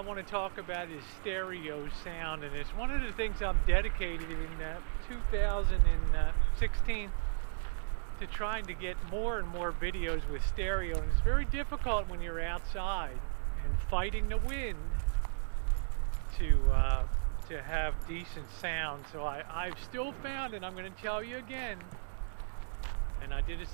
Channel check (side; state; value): left; silent; digital silence